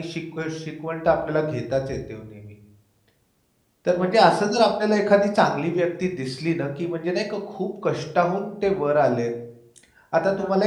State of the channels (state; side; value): identical; both; correlation 1.00